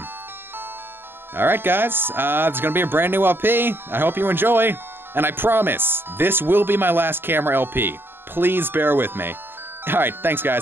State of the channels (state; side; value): late; left; 0.10 ms